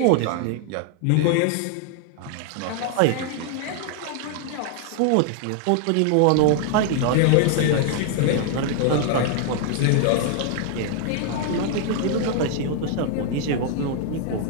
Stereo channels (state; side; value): different; both; correlation 0.00